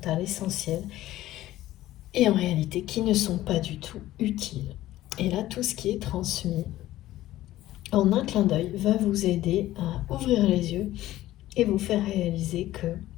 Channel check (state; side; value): quieter; right; 15.0 dB